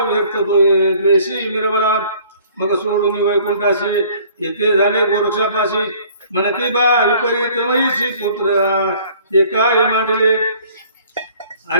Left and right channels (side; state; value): both; inverted; correlation -0.55